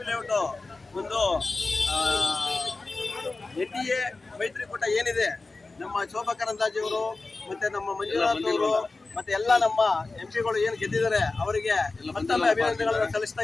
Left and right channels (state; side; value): quieter; right; 3.6 dB